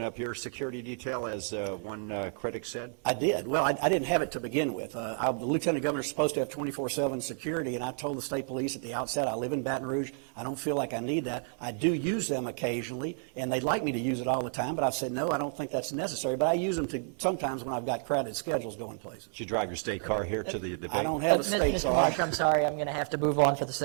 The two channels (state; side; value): silent; left; 56 dB below the other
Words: up your security detail, as one critic said? I did. Well, I didn't have it to begin with. The lieutenant governor is supposed to have 24/7 security, and I told the state police at the outset, I live in Baton Rouge. I don't feel like I need that. I do use them occasionally, and they'd like me to use it all the time, but I've said, no, I don't think that's necessary. But I use them sometimes when I've got crowded schedules going places. Did you drive your state car here to the debate? I don't have a state Mr. car. Marsh, I'm sorry, I'm going to have to move on for the